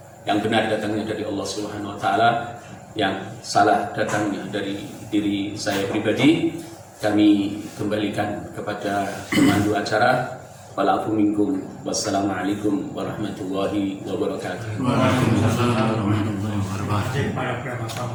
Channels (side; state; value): both; identical; correlation 1.00